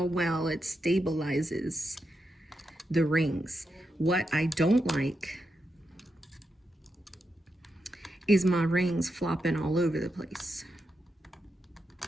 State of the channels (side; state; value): both; normal; correlation 0.86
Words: well it stabilizes the rings. What I don't like is my rings flopping all over the place.